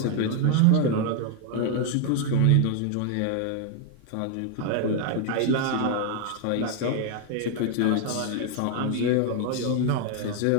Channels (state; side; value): different; both; correlation 0.01